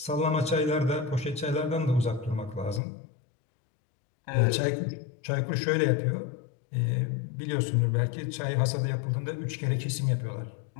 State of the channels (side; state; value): right; drops out; at 2.8 s